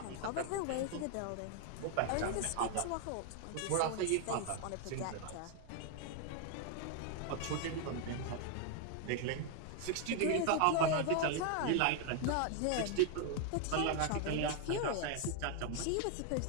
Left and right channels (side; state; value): both; different; correlation 0.00